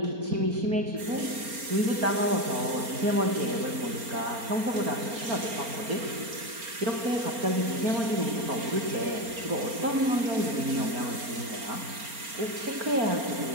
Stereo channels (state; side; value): late; left; 4.3 ms